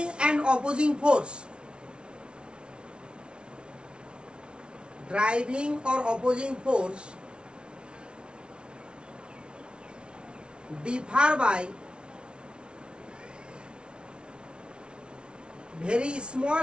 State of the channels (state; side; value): late; left; 0.057 ms